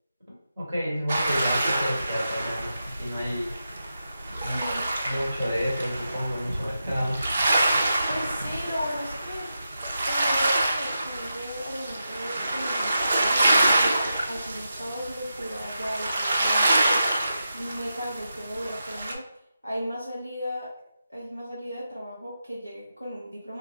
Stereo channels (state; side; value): inverted; both; correlation -0.89